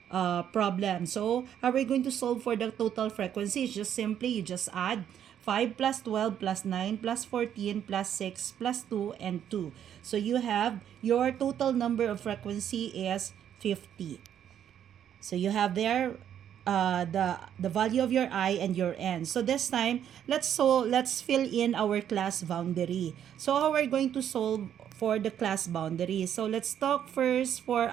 problem. So how are we going to solve for the total frequency? It's just simply, you just add 5 plus 12 plus 9 plus 14 plus 6 plus 2 and 2. So you have your total number of frequency is 50. So you have there the value of your I and your N. So this time, let's fill in our class boundary. So how are we going to solve for the class boundary? So let's talk first for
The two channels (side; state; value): left; quieter; 9.7 dB